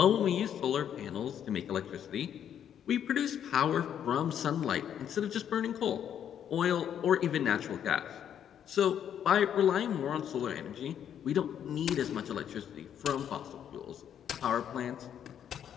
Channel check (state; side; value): quieter; right; 9.3 dB